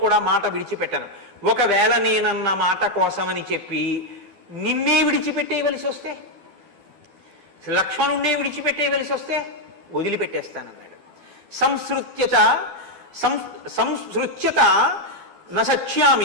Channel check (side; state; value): left; late; 12 ms